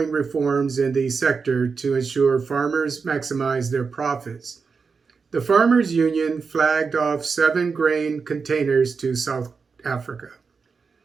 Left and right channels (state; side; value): quieter; left; 5.1 dB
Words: reforms in the sector to ensure farmers maximize their profits. The Farmers Union flagged off 7 grain containers to South Africa.